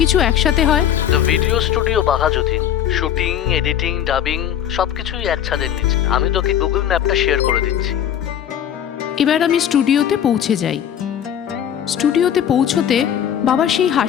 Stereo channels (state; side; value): quieter; right; 10.0 dB